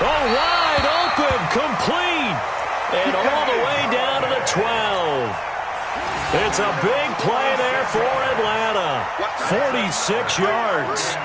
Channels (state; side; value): identical; both; correlation 1.00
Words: open, complete. And all the way down to the 12. It's a big play there for Atlanta. 46 yards.